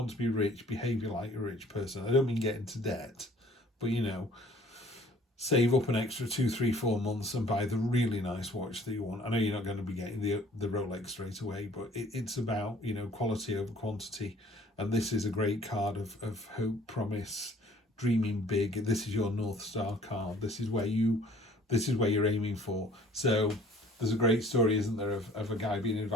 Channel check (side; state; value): both; normal; correlation 0.54